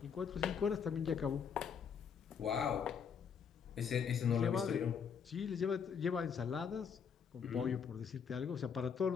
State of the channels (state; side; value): quieter; right; 6.9 dB